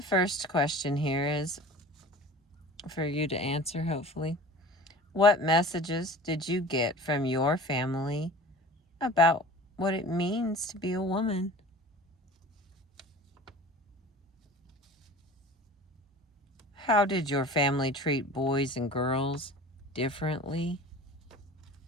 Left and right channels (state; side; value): normal; both; correlation 0.41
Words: first question here is for you to answer, hopefully. What messages did you get from your family about what it means to be a woman? How did your family treat boys and girls differently?